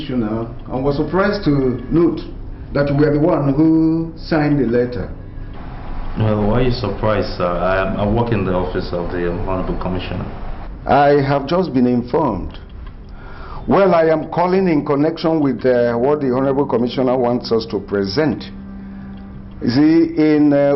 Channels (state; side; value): identical; both; correlation 1.00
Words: and was surprised to note that you were the one who signed the letter. Well, why are you surprised, sir? I work in the office of the Honorable Commissioner. I have just been informed. Well, I am calling in connection with what the Honorable Commissioner wants us to present. You see, in